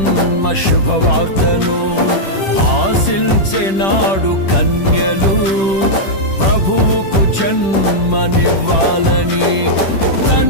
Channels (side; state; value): right; late; 10 ms